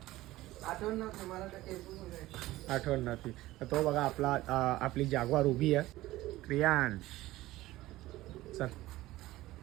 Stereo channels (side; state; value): left; quieter; 17.1 dB